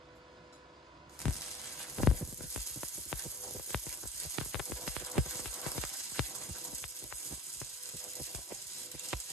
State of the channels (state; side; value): normal; both; correlation 0.41